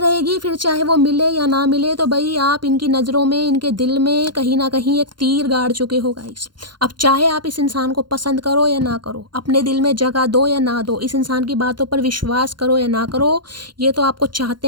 फिर चाहे वो मिले या ना मिले, तो भाई आप इनकी नज़रों में, इनके दिल में कहीं ना कहीं एक तीर गाड़ चुके हो गाइस। अब चाहे आप इस इंसान को पसंद करो या ना करो, अपने दिल में जगह दो या ना दो, इस इंसान की बातों पर विश्वास करो या ना करो, ये तो आपको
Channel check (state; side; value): late; left; 0.71 ms